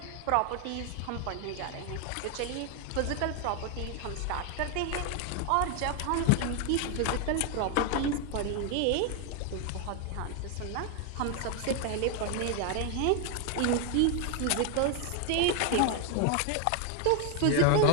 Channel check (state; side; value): different; both; correlation 0.01